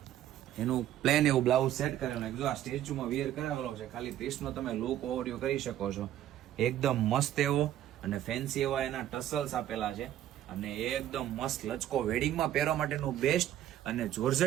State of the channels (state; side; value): quieter; left; 12.1 dB